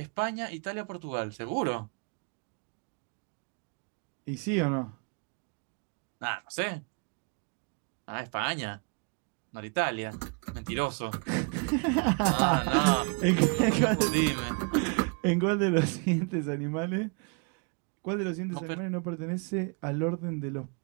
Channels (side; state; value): left; quieter; 36.5 dB